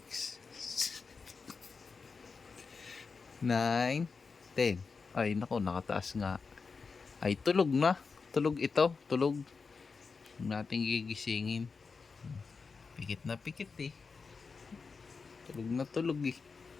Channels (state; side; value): quieter; right; 4.8 dB